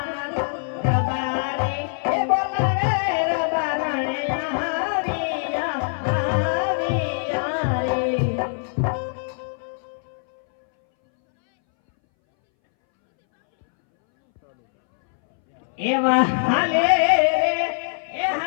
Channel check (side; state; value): right; silent; 62 dB below the other